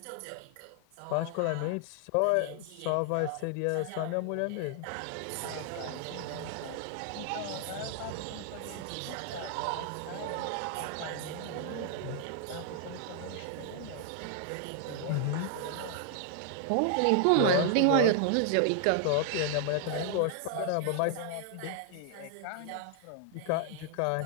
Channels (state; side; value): different; both; correlation 0.00